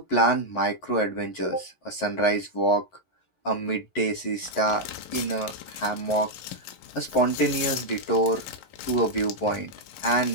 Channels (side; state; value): right; late; 11 ms